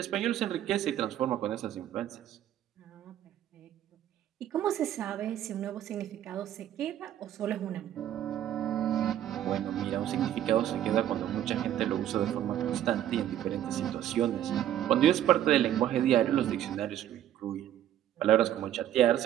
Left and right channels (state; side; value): quieter; left; 11.5 dB